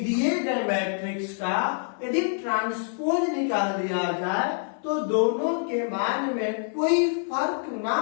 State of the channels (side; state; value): right; silent; 61 dB below the other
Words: गए मैट्रिक्स का यदि ट्रांसपोज निकाल दिया जाए तो दोनों के मान में कोई फर्क ना